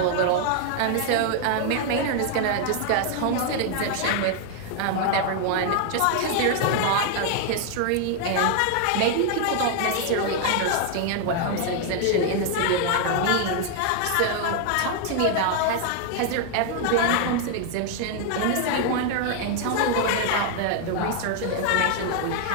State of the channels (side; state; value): both; different; correlation 0.00